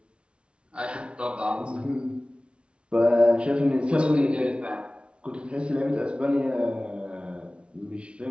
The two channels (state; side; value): late; left; 0.058 ms